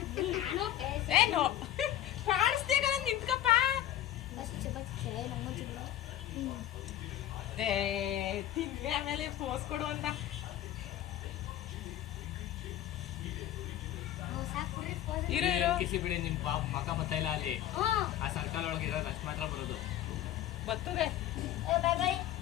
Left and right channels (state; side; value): quieter; right; 12.4 dB